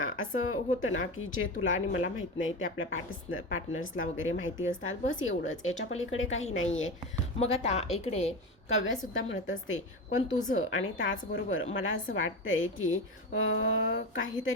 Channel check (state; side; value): normal; both; correlation 0.23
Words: असं होतं ना की जे तुला आणि मला माहीत नाही ते आपल्या पार्टनर्सला वगैरे माहिती असतात, बस एवढंच, याच्या पलीकडे काही नाही आहे। मग आता इकडे काव्यासुद्धा म्हणत असते, पण तुझं आणि त्याचबरोबर मला असं वाटतंय की